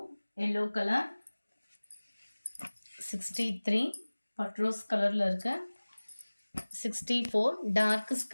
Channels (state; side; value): inverted; both; correlation -1.00